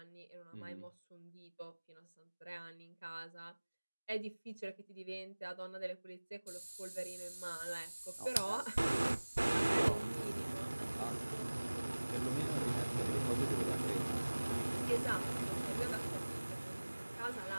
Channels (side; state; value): both; inverted; correlation -1.00